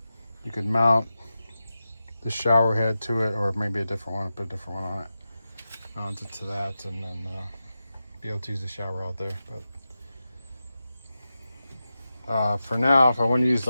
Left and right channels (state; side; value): inverted; both; correlation -0.92